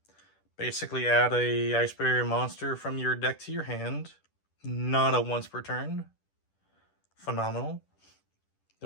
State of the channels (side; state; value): right; late; 10 ms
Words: Basically add a Ice Barrier monster from your deck to your hand. Not a once per turn. Phenomenal.